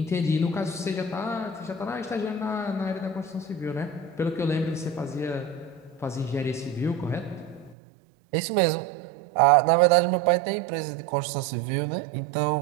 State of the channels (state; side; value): drops out; left; at 7.8 s